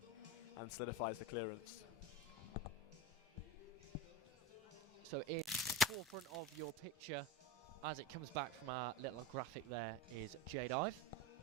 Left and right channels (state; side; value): normal; both; correlation 0.27